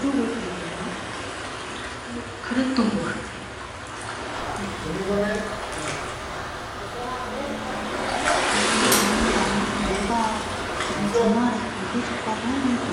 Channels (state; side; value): identical; both; correlation 1.00